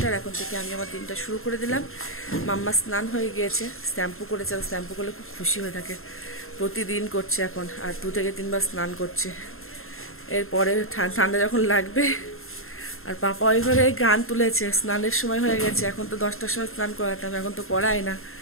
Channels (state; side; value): late; right; 0.61 ms